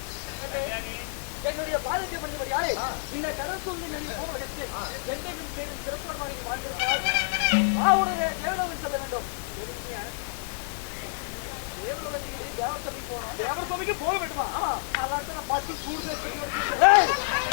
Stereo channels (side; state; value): right; silent; digital silence